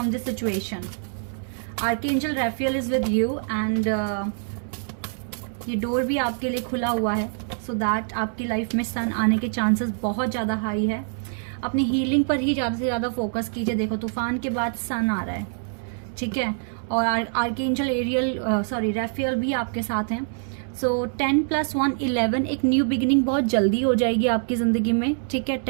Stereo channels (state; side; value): silent; left; digital silence